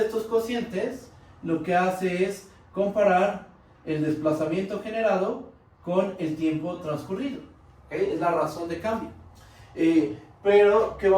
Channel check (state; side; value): identical; both; correlation 1.00